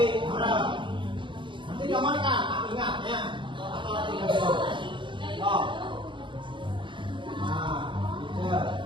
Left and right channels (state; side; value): late; left; 0.24 ms